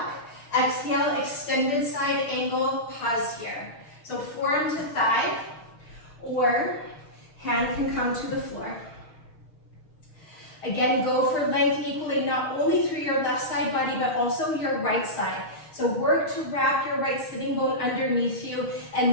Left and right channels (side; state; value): right; late; 6.4 ms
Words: Exhale, extended side angle, pause here. So forearm to thigh, or hand can come to the floor. Again, go for length equally, not only through your left side body, but also your right side. So work to wrap your right sitting bone underneath you